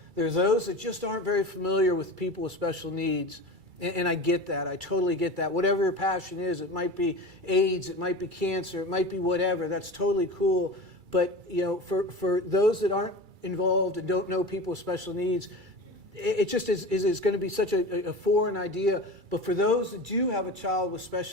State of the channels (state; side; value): late; left; 2.3 ms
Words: There's those that just aren't very familiar with people with special needs, and I get that. I totally get that. Whatever your passion is, it might be AIDS, it might be cancer, it might be whatever. That's totally cool. But for those that aren't involved and don't know people with special needs, it just is going to be such a foreign idea. But for those that do have a child with